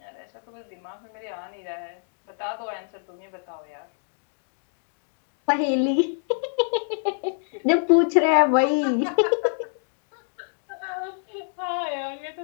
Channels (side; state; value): right; silent; 61 dB below the other